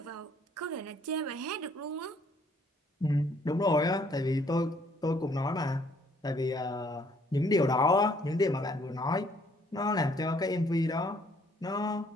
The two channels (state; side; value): normal; both; correlation 0.64